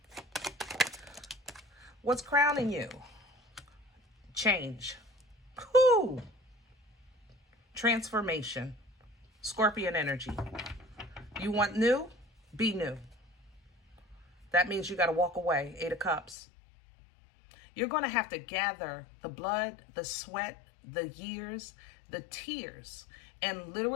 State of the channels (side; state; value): right; drops out; at 16.4 s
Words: What's crowning you? Change. Whew. Transformation. Scorpion energy. You want new? Be new. That means you got to walk away. 8 of Cups. You're going to have to gather the blood, the sweat, the years, the tears, and